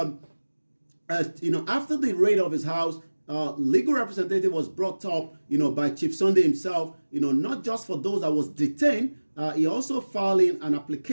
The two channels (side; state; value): both; inverted; correlation -1.00